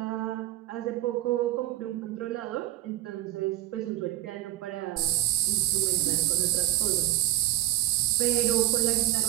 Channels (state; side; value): quieter; left; 15.2 dB